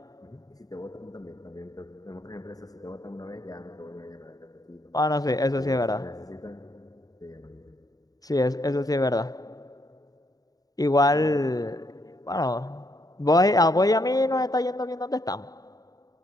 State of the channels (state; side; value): late; right; 0.18 ms